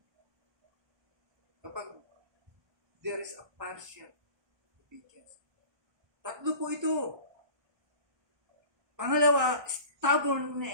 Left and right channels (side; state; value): left; late; 1.2 ms